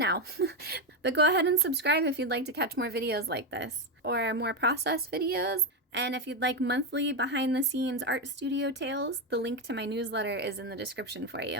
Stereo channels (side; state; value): both; normal; correlation 0.10